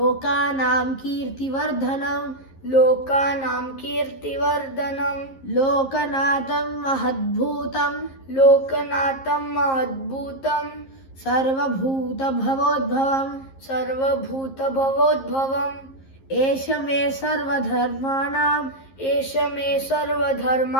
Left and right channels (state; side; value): late; right; 11 ms